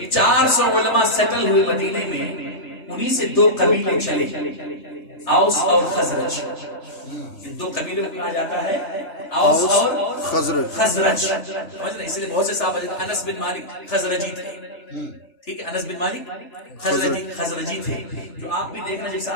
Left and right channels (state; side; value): late; right; 3.3 ms